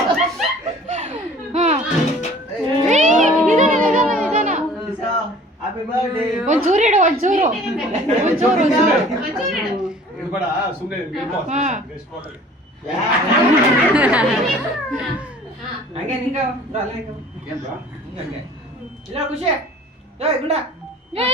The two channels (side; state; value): both; normal; correlation 0.49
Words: ಒಂಚೂರು ಇಡು ಒಂಚೂರು ಒಂಚೂರು ಇರ್ಬೇಡ ಸುಮ್ಮನೆ ಹಂಗೆ ನಿಂಗ ಇಲ್ಲ ಖುಷಿ ಗುಂಡ